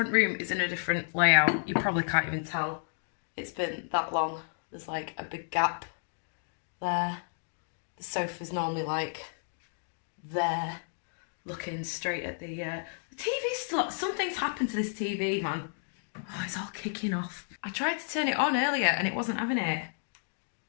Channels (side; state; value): right; silent; digital silence